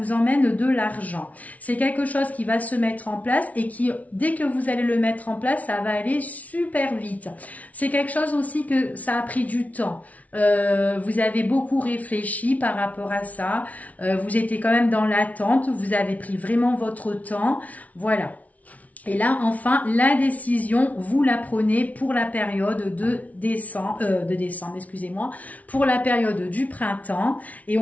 emmène de l'argent. C'est quelque chose qui va se mettre en place et qui, dès que vous allez le mettre en place, ça va aller super vite. C'est quelque chose aussi que ça a pris du temps. Vous avez beaucoup réfléchi par rapport à ça. Vous étiez quand même dans l'attente. Vous avez pris vraiment votre temps. Voilà. Et là, enfin, la décision, vous la prenez pour la période de décembre, excusez-moi, pour la période du printemps. Et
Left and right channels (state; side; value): late; right; 0.070 ms